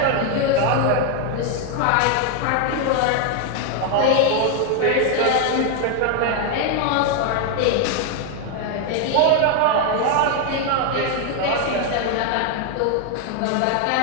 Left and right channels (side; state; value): both; different; correlation 0.01